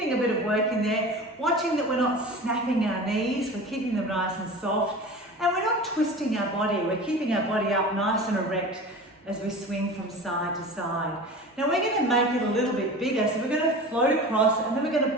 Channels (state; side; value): normal; both; correlation 0.35